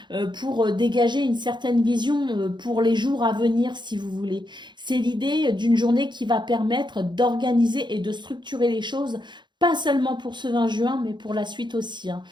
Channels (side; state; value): left; late; 0.22 ms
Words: pour dégager une certaine vision pour les jours à venir, si vous voulez. C'est l'idée d'une journée qui va permettre d'organiser et de structurer les choses pas seulement pour ce 20 juin, mais pour la suite aussi. Hein.